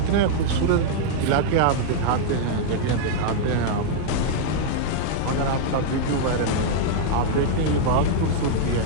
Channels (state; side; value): different; both; correlation -0.01